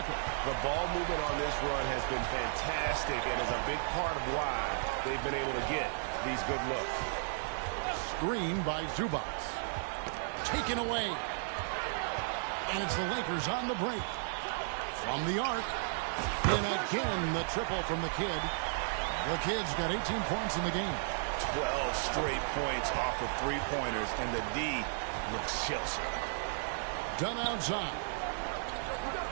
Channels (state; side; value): silent; left; 55 dB below the other